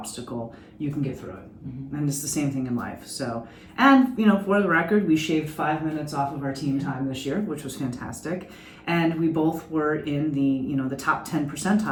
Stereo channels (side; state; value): both; identical; correlation 1.00